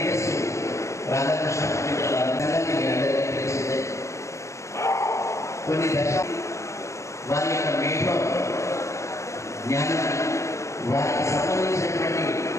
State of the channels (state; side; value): late; right; 0.14 ms